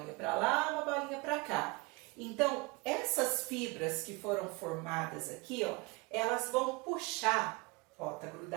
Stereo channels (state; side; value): quieter; left; 26.6 dB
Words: para lá, uma bolinha para cá. Então, essas fibras que foram formadas aqui, ó, elas vão puxar, ó, tá